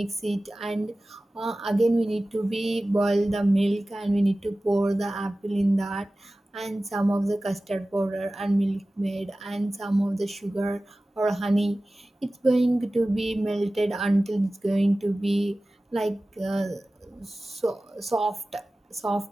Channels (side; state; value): both; normal; correlation 0.96